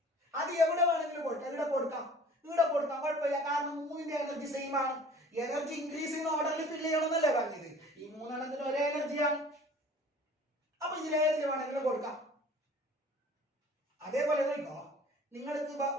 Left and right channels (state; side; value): normal; both; correlation 0.47